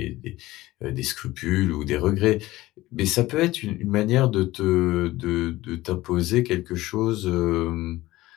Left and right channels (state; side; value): quieter; right; 17.6 dB